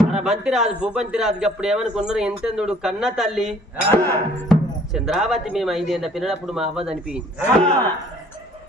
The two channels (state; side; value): normal; both; correlation 0.57